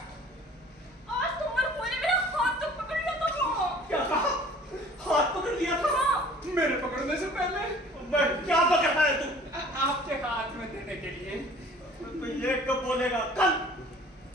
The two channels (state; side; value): normal; both; correlation 0.50